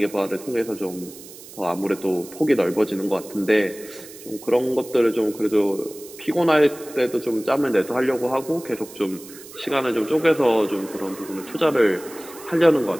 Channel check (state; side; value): noise; right; hiss, 17 dB below the sound